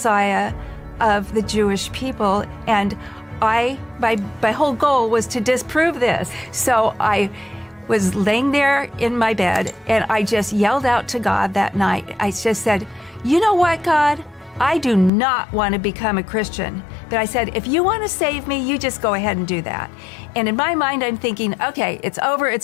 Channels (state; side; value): drops out; right; at 15.1 s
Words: of the Jewish people. And my whole goal was to disprove this. So I was laying there in my bed and I just yelled out to God that night. I just said, you know what, God? I do not want to become a Christian. But I said, if you want to save me, you just go ahead and do that. And in my mind, I'm thinking, okay, it's over,